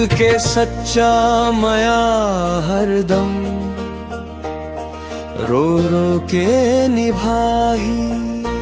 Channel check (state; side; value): identical; both; correlation 1.00